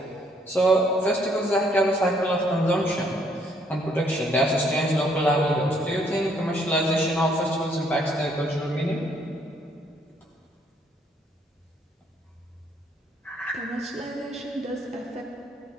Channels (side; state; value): both; normal; correlation 0.68